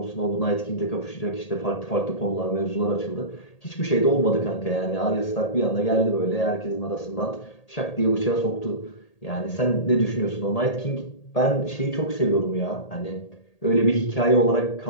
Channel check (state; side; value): late; right; 1.8 ms